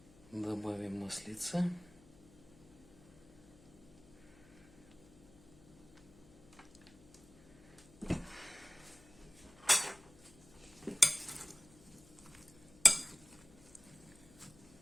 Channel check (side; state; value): left; noise; hum, 24 dB below the sound